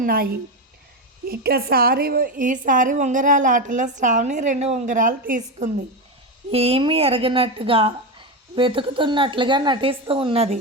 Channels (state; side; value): normal; both; correlation 0.14